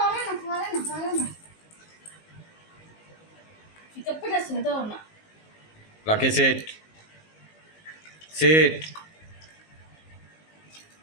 না ঠিক আছে দাও না লাকি সেট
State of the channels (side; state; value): right; late; 19 ms